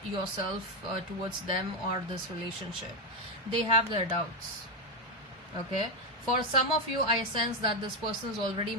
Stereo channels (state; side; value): normal; both; correlation 0.07